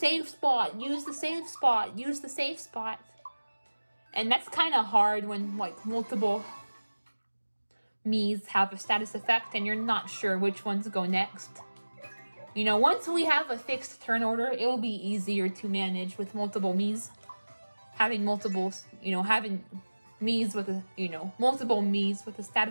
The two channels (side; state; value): both; inverted; correlation -1.00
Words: spot, use the safe spot, use the safe spot. And that's kind of hard when multiple Miis have a status effect and you're not sure which ones go next. Once we have a fixed turn order, it will be easier to manage with multiple Miis. Having having Miis with multiple Miis with a